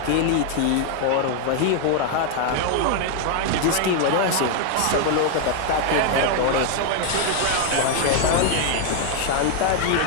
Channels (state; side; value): different; both; correlation 0.00